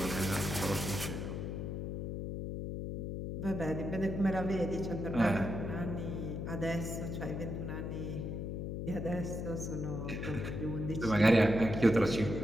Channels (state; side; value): noise; left; hum, 4 dB below the sound